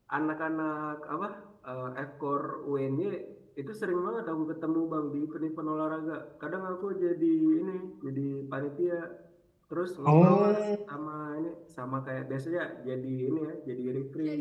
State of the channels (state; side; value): identical; both; correlation 1.00